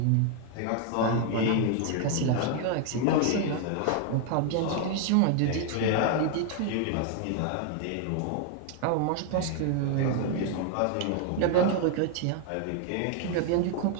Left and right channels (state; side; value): different; both; correlation 0.00